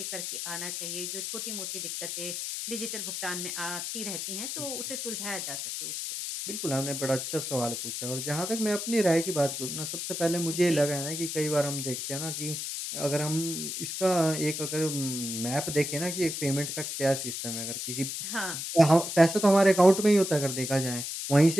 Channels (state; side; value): noise; left; hiss, 4 dB below the sound